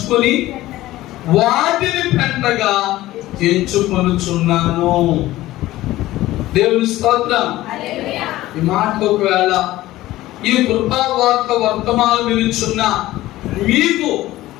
వాటిని పెంటగా ఎంచుకొనుచున్నాను. దేవుని స్తోత్రం. ఈ మాట ఒకవేళ ఈ కృపావార్త వర్తమానం వినుచున్న మీకు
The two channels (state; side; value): quieter; right; 16.3 dB